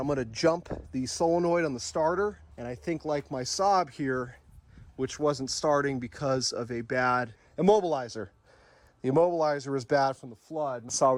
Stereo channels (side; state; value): both; identical; correlation 1.00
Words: gonna jump the solenoid on the starter. And I think like my Saab here, which wasn't starting because of a bad immobilizer. The immobilizer was bad from the flood. So I